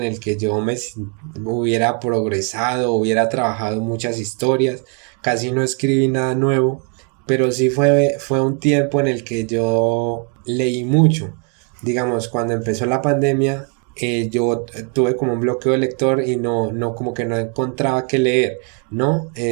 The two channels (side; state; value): left; quieter; 39.8 dB